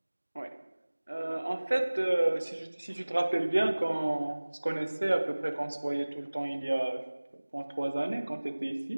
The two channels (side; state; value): both; inverted; correlation -1.00